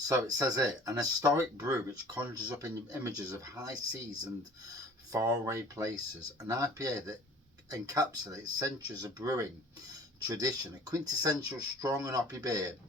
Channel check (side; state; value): both; normal; correlation 0.48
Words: it says here, an historic brew which conjures up images of high seas and faraway places. An IPA that encapsulates centuries of brewing tradition. A quintessential strong and hoppy beer